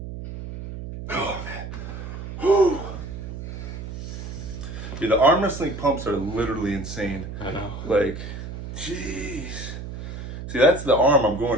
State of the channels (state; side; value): noise; right; hum, 9 dB below the sound